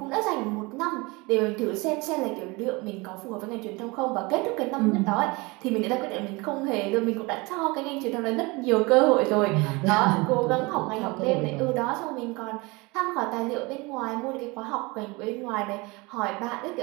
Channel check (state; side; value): quieter; left; 25.3 dB